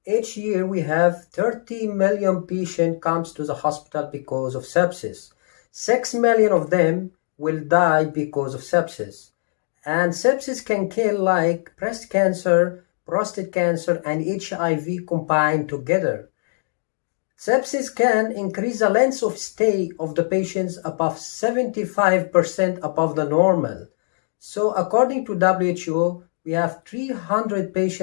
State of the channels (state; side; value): silent; right; digital silence